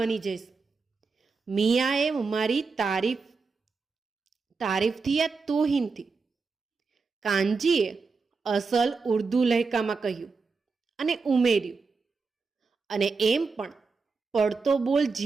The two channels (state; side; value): quieter; left; 4.6 dB